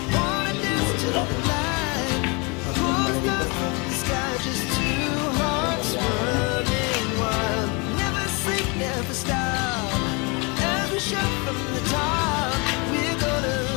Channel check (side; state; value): right; quieter; 30.0 dB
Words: wanna dance to the light. Falling down from the sky, just two hearts running wild. Never sleep, never stop. Every shot from the top. We're